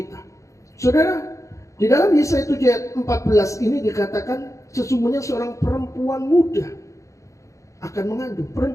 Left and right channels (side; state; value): right; late; 0.15 ms